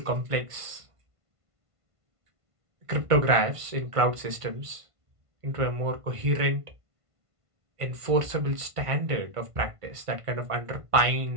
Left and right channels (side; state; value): left; late; 1.5 ms